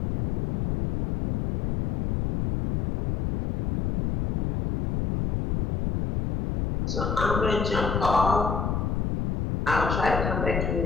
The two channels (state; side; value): noise; left; rumble, 1 dB below the sound